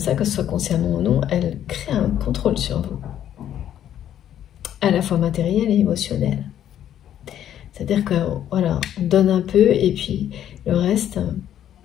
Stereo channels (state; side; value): quieter; right; 10.7 dB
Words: que ce soit consciemment ou non, elles créent un contrôle sur vous, à la fois matériel et émotionnel. C'est-à-dire que voilà, on donne un peu et puis le reste